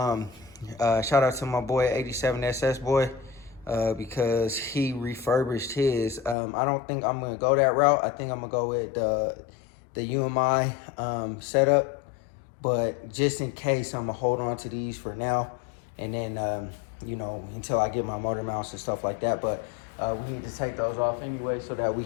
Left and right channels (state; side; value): drops out; right; at 6.4 s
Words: out to my boy 87SS boy because he refurbished his. I don't think I'm gonna go that route. I think I'm gonna go with the UMI setup, but just in case, I'm gonna hold on to these for now, and then you know, until I get my motor mounts and stuff like that. But we need to take those off anyway so that we